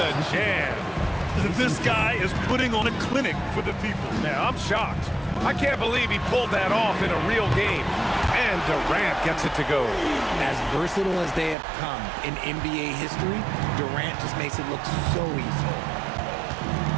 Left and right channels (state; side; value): drops out; left; at 11.6 s